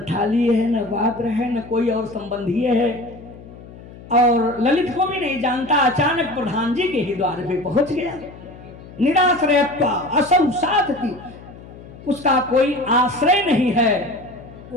थाली है, न पात्र है, न कोई और संबंधी है। और ललित को भी नहीं जानता, अचानक प्रधान जी के ही द्वार पे पहुंच गया। निराश्रयत्वा असौ साधति, उसका कोई आश्रय नहीं है,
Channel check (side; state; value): left; noise; hum, 18 dB below the sound